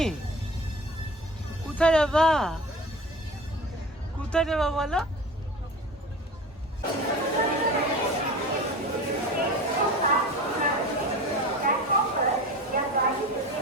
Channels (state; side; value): normal; both; correlation 0.35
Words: কোথায় যাবা? কোথায় যাবা বলো?